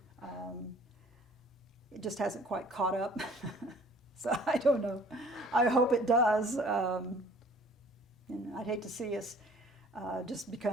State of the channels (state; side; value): normal; both; correlation 0.53